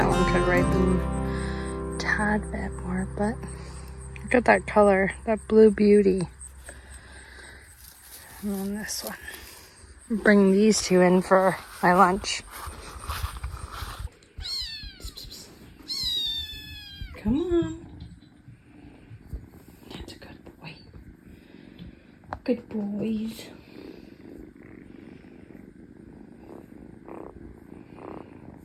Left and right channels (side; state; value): both; identical; correlation 1.00